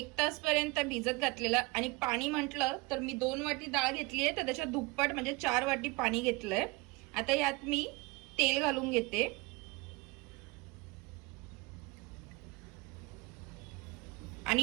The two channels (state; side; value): quieter; left; 25.0 dB